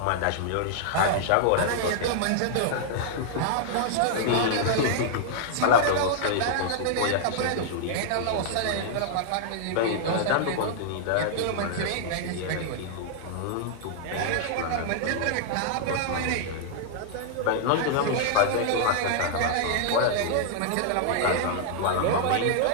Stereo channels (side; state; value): both; different; correlation -0.01